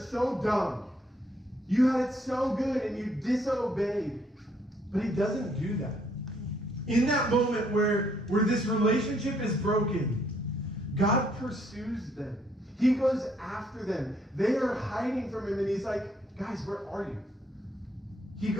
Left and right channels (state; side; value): normal; both; correlation 0.69